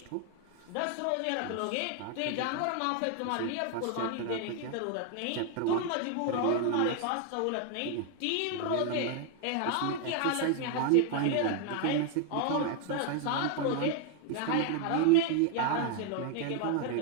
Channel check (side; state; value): both; different; correlation 0.01